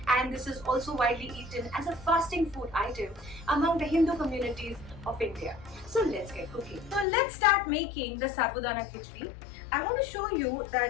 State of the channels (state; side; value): drops out; right; at 7.1 s